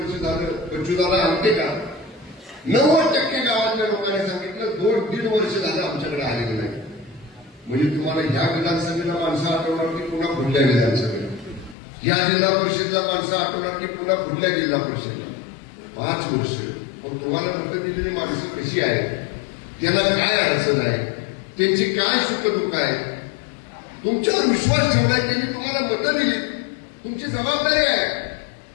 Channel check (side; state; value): right; drops out; at 11.8 s